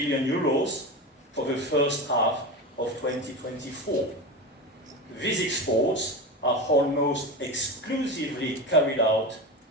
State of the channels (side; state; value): both; normal; correlation 0.23